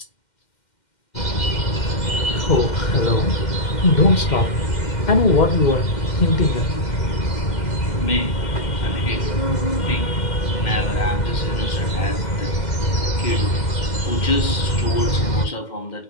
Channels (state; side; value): late; right; 2.1 ms